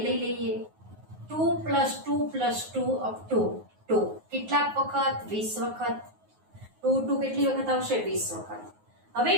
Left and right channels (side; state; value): left; late; 9.5 ms